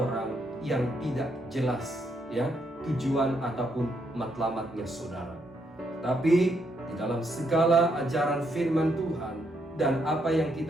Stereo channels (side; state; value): both; normal; correlation 0.76